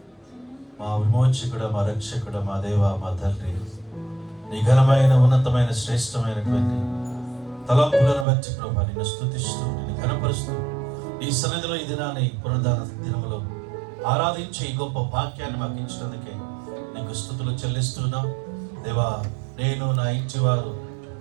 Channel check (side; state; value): left; drops out; at 8.2 s